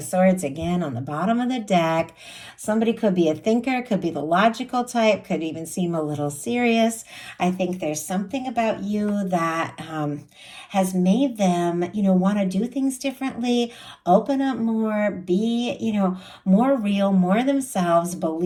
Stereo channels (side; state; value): both; identical; correlation 1.00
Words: Swords again on the bottom of the deck. Somebody could be a thinker, could be the logical type, could even seem a little serious. I think there's something about you that has made them, you know, want to do things differently, open up more, be, you know, more real, more themselves,